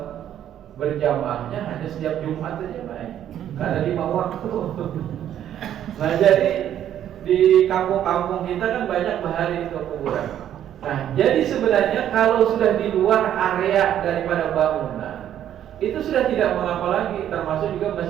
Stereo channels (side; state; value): left; quieter; 10.7 dB